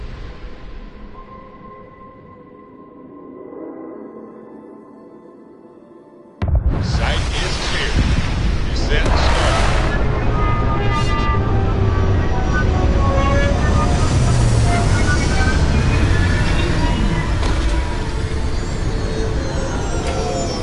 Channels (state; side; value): identical; both; correlation 1.00